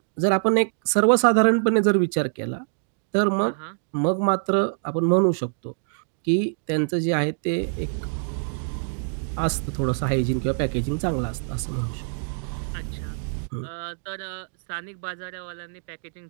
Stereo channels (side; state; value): left; silent; digital silence